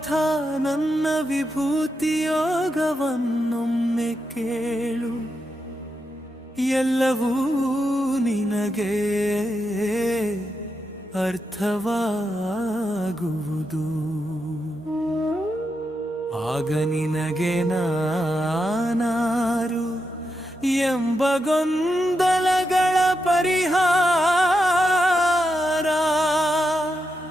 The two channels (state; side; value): normal; both; correlation 0.85